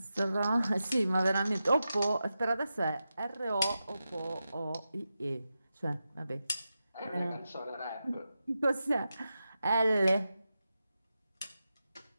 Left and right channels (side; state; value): both; inverted; correlation -0.90